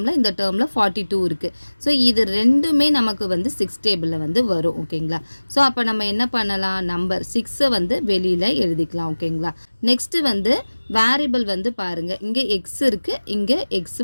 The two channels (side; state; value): both; inverted; correlation -1.00